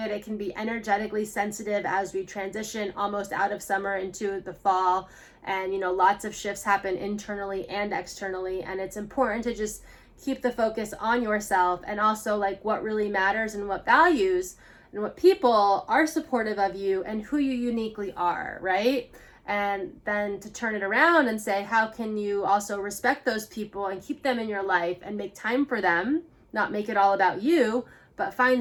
It can be energetically sensitive as we transition almost out of summer into the fall. And, you know, lots of shifts happen internally and externally. And it's important to just keep the focus on yourself, and also like what really matters and what values and what people are supportive of you and who you uniquely are, right? And then to turn it around and say, how can you also respect those people and keep them in your life and make time for them, not make it all about you, but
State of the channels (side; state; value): both; identical; correlation 1.00